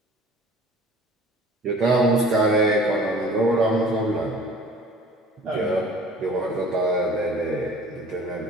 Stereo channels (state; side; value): normal; both; correlation 0.47